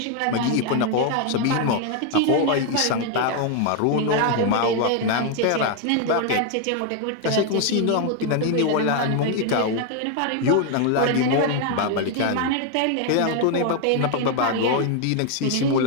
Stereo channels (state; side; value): different; both; correlation 0.01